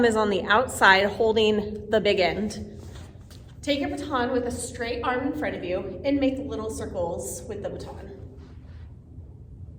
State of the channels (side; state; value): both; identical; correlation 1.00